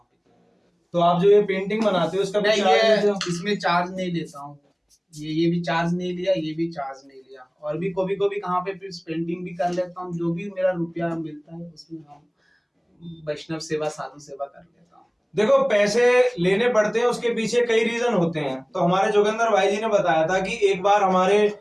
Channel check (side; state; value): both; identical; correlation 1.00